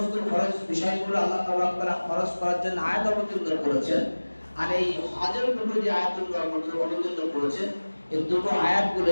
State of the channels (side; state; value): both; inverted; correlation -1.00